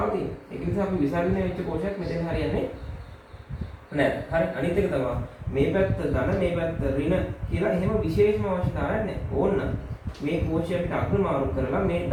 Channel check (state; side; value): identical; both; correlation 1.00